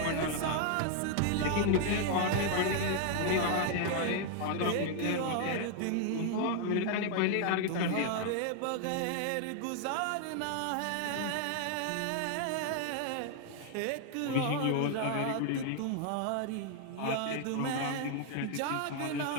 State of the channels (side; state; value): both; different; correlation 0.00